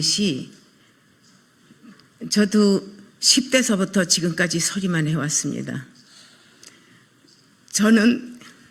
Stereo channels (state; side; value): identical; both; correlation 1.00